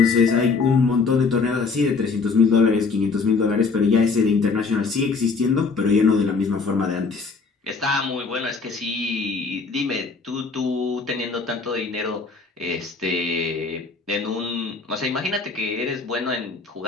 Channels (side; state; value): right; quieter; 4.4 dB